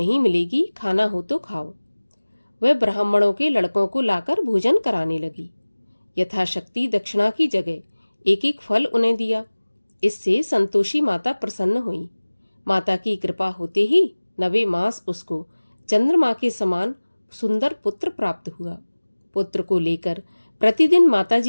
मिलेगी, खाना हो तो खाओ। वह ब्राह्मणों के लड़कों को लाकर भोजन कराने लगी। यथाशक्ति दक्षिणा की जगह एक एक फल उन्हें दिया। इससे संतोषी माता प्रसन्न हुई। माता की कृपा होते ही 9वें मास उसको चंद्रमा के समान सुंदर पुत्र प्राप्त हुआ। पुत्र को लेकर प्रतिदिन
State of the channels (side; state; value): both; inverted; correlation -1.00